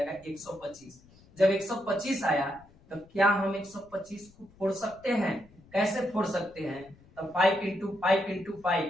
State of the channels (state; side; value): noise; left; rumble, 26 dB below the sound